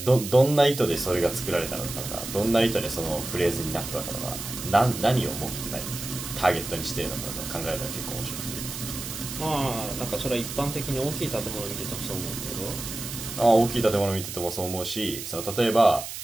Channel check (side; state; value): right; noise; hiss, 8 dB below the sound